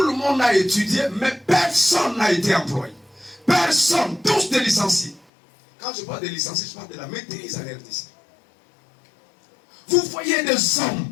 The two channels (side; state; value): right; drops out; at 5.2 s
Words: le monde a étudié, mais personne n'a été employé. Personne, tous des licenciés. Quand je parle de licenciés, je parle de la maîtrise à RDC. Vous voyez des